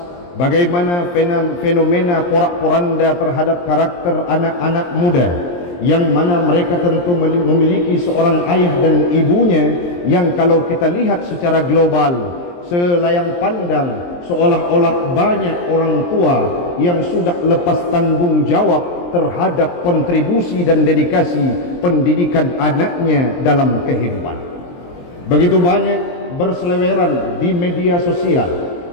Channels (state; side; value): late; right; 23 ms